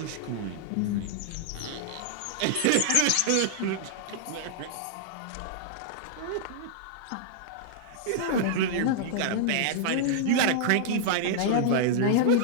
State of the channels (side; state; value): both; different; correlation -0.01